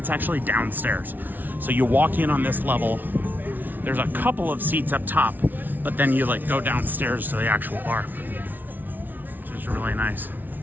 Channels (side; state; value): left; late; 0.085 ms